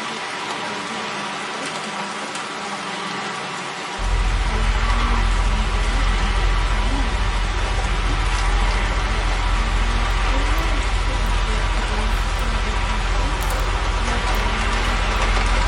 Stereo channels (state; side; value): identical; both; correlation 1.00